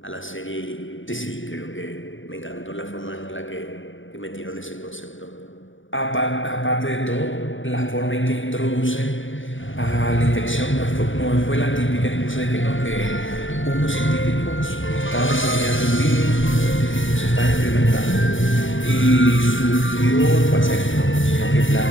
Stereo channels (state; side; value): late; right; 0.57 ms